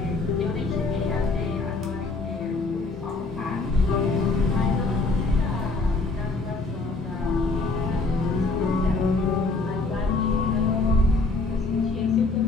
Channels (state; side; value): quieter; right; 3.5 dB